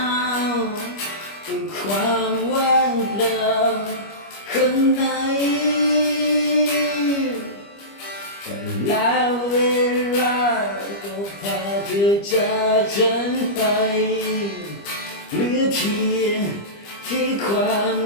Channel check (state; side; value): late; right; 25 ms